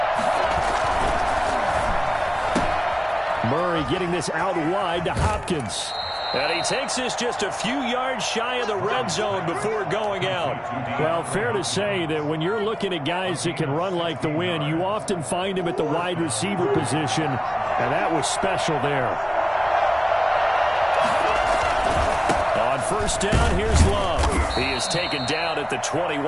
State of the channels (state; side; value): identical; both; correlation 1.00